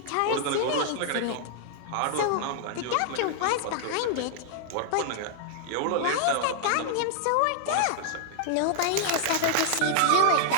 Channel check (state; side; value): different; both; correlation -0.01